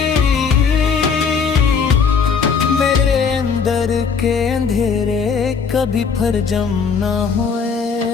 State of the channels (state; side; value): quieter; right; 5.8 dB